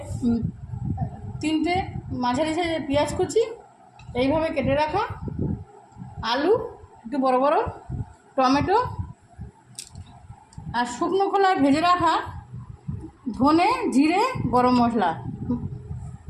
3টে মাঝারি সাইজের পেঁয়াজ কুচি এইভাবে কেটে রাখা, আলু একটু বড় বড়, টমেটো, আর শুকনো খোলায় ভেজে রাখা ধনে, জিরে, গরম মশলা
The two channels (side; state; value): both; identical; correlation 1.00